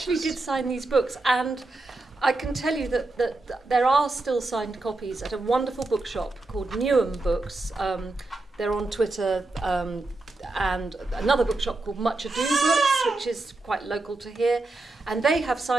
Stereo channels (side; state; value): left; quieter; 3.0 dB